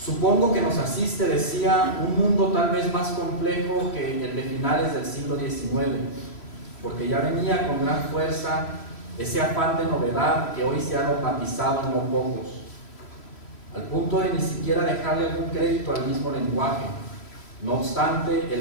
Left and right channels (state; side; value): late; right; 3.1 ms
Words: que nos asiste, decía, un mundo tal vez más complejo que el de finales del siglo XIX, porque ya venía con gran fuerza ese afán de novedad que hoy se ha dogmatizado en no pocos, al punto de ni siquiera dejarle algún crédito al mismo lenguaje. No obstante,